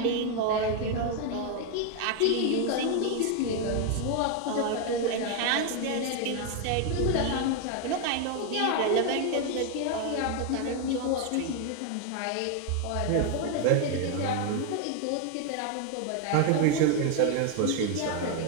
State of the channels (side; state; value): both; different; correlation 0.01